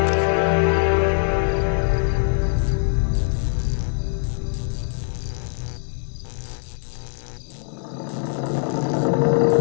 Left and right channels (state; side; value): silent; right; digital silence